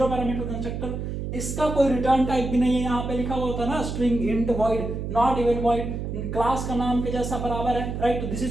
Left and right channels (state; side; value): noise; right; hum, 4 dB below the sound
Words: पैरामीटर कंस्ट्रक्टर। इसका कोई रिटर्न टाइप भी नहीं है, यहाँ पे लिखा हुआ होता है ना string, int, void, not even void, class का नाम के जैसा बराबर है, राइट। तो दिस